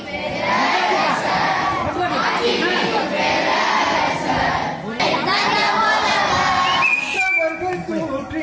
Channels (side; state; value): both; identical; correlation 1.00